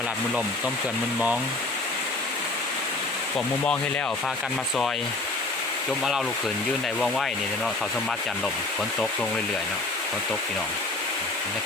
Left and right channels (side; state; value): right; quieter; 3.1 dB